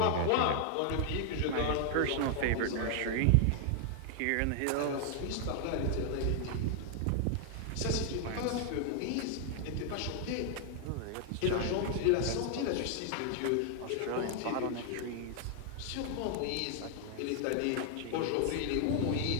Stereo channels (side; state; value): both; different; correlation 0.00